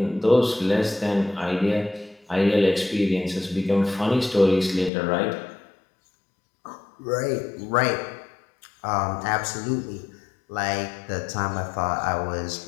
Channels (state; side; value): drops out; right; at 4.9 s